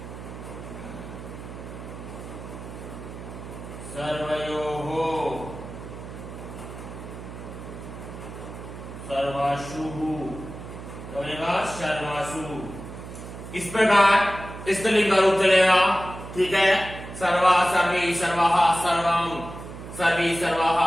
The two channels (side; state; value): right; noise; hum, 12 dB below the sound